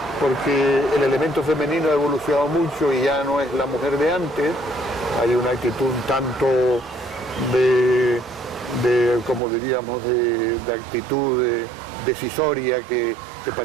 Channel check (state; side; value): drops out; left; at 9.4 s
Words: porque el elemento femenino ha evolucionado mucho y ya no es la mujer de antes. Hay una actitud tanto de como diríamos, de actitud decisoria que